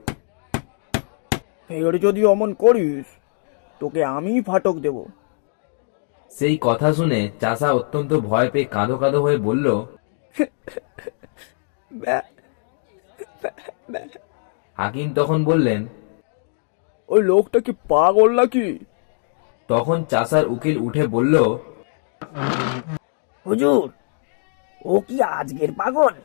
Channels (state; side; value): silent; right; digital silence